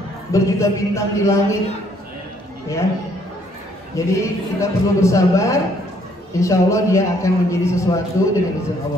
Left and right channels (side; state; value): both; normal; correlation 0.66